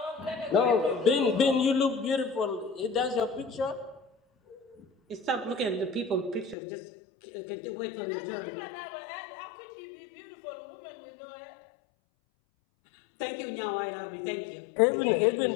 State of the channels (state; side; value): drops out; right; at 6.6 s